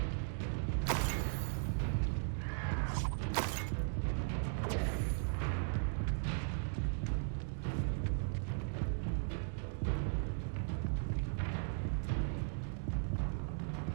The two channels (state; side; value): silent; left; digital silence